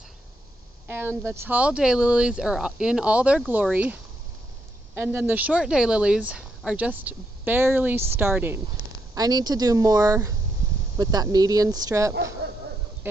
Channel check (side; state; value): both; normal; correlation 0.79